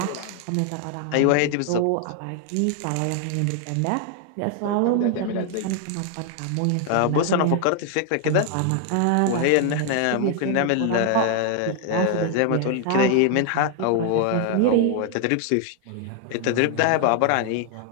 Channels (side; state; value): both; different; correlation 0.00